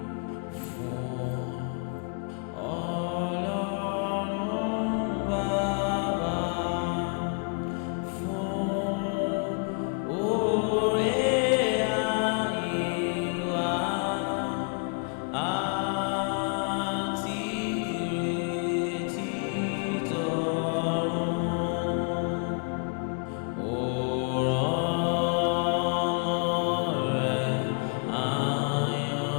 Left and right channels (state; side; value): quieter; right; 38.8 dB